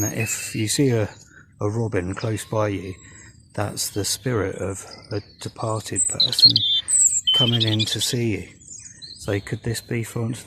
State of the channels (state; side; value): identical; both; correlation 1.00